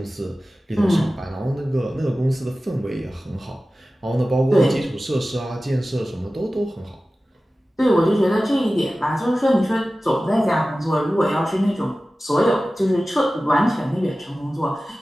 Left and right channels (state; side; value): normal; both; correlation 0.96